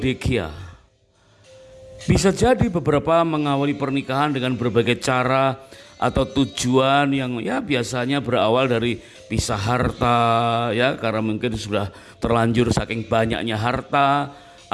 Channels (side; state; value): both; identical; correlation 1.00